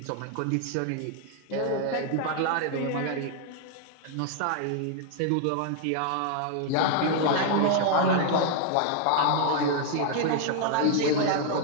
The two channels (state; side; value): different; both; correlation 0.00